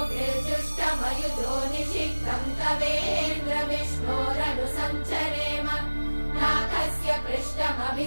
निषिक्तं तवेन्द्र विष्णोरनुसञ्चरेम नाकस्य पृष्ठमभि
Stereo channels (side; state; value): both; inverted; correlation -1.00